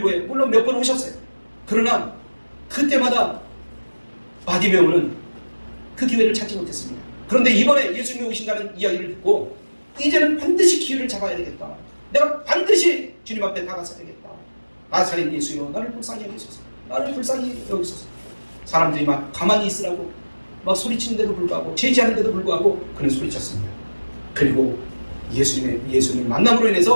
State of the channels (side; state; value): both; inverted; correlation -1.00